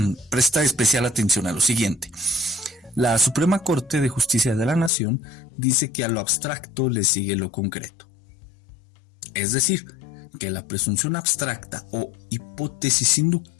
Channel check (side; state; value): right; drops out; at 4.9 s